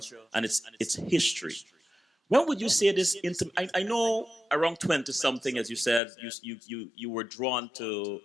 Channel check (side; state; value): right; drops out; at 6.0 s